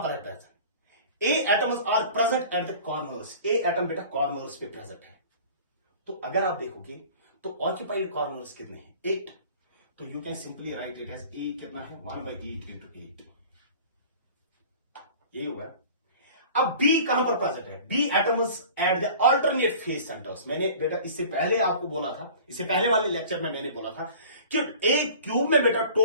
पर है present? A atoms are present at the corners. A atom बेटा कॉर्नर्स पे प्रेजेंट है. तो अगर आप देखोगे तो ऑक्यूपाइड कॉर्नर्स कितने हैं? 8. तो you can simply write it as A कितना है? 1/8 इंटू 8. ये होगा. अब बी कहां पर प्रेजेंट है? B atoms at the alternate face centres. मैंने बेटा इससे पहले आपको बोला था, इससे पहले वाले लेक्चर में मैंने बोला था कि एक क्यूब में बेटा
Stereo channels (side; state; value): both; inverted; correlation -0.43